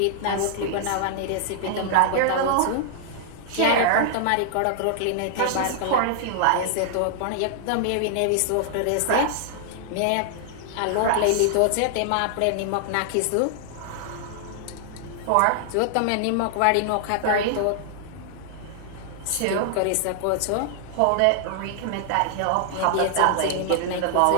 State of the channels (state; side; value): different; both; correlation -0.01